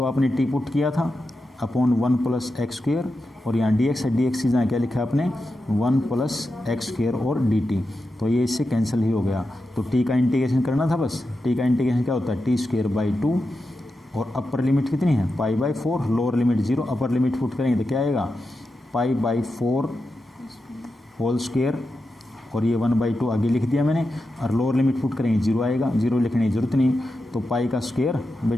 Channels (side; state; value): both; normal; correlation 0.89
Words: आपने टी पुट किया था अपॉन 1 प्लस एक्स स्क्वायर, और यहाँ dx है, dx की जगह क्या लिखा है आपने 1 प्लस एक्स स्क्वायर और dt। तो ये इससे कैंसिल ही हो गया। तो t का इंटीग्रेशन करना था बस। t का इंटीग्रेशन क्या होता है t²/2, और अपर लिमिट कितनी है π/4, lower limit 0, upper limit put करेंगे तो क्या आएगा π/4 होल स्क्वायर, और ये 1/2 आगे लिख दिया मैंने, और लोअर लिमिट पुट करेंगे 0 आएगा, 0 लिखने की जरूरत नहीं। तो पाई का स्क्वायर